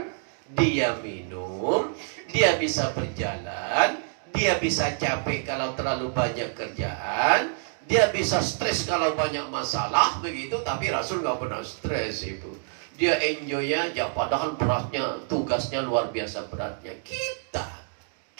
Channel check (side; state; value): left; silent; 60 dB below the other